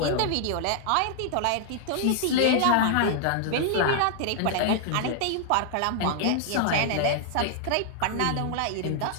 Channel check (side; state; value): both; different; correlation 0.00